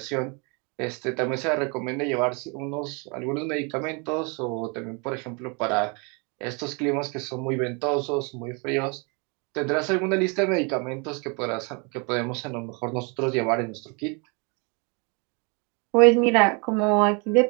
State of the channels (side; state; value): left; quieter; 32.8 dB